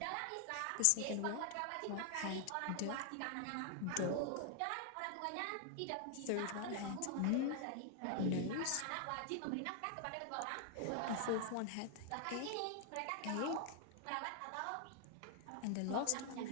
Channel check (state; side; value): different; both; correlation 0.00